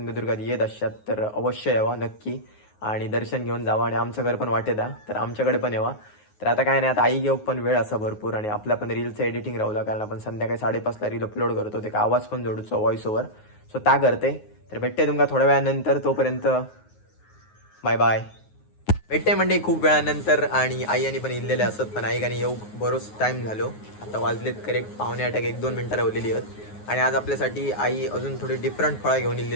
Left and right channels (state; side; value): late; right; 9.5 ms